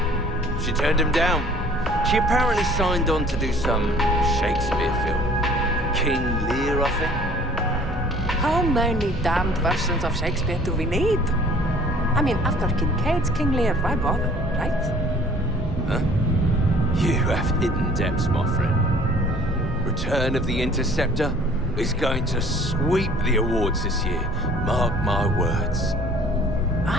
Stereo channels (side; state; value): both; normal; correlation 0.53